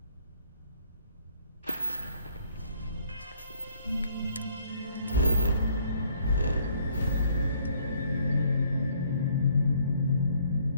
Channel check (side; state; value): both; inverted; correlation -0.63